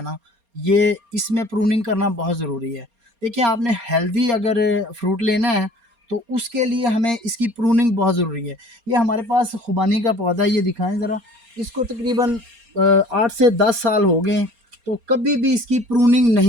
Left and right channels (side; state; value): left; late; 4.3 ms